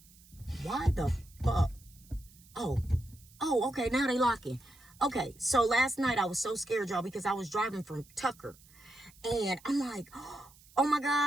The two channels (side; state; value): right; noise; hiss, 25 dB below the sound